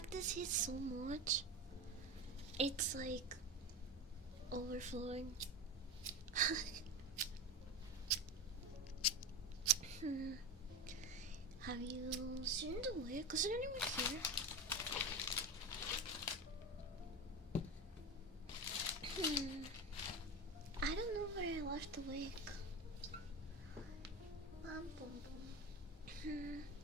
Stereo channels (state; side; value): normal; both; correlation 0.22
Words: this hit so much. It's like overflowing. Have you seen the wig? Is there anyone here? I don't know where I left the wig.